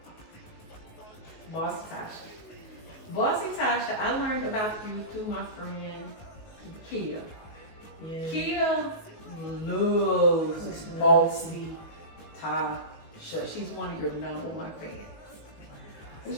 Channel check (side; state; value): right; late; 19 ms